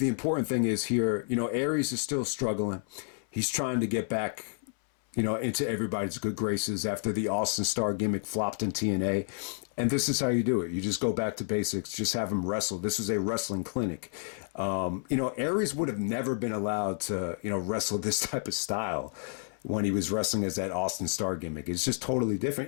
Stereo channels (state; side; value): silent; right; 58 dB below the other